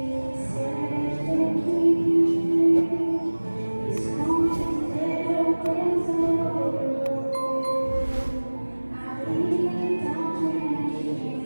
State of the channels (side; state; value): both; inverted; correlation -1.00